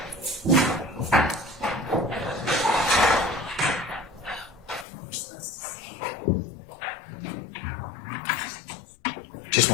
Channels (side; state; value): right; drops out; at 4.9 s